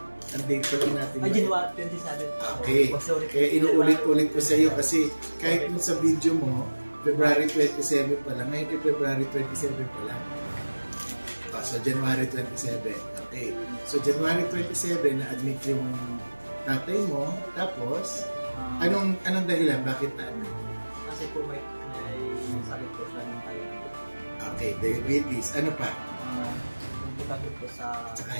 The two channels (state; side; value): inverted; both; correlation -1.00